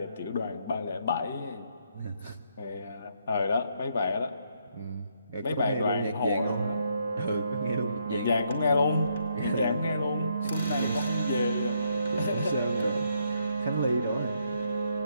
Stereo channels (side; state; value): both; inverted; correlation -0.74